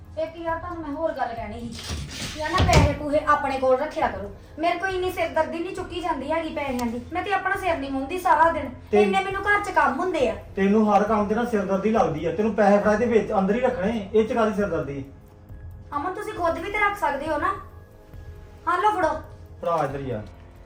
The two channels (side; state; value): both; identical; correlation 1.00